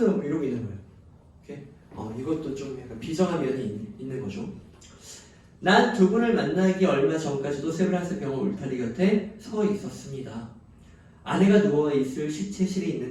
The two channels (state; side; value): identical; both; correlation 1.00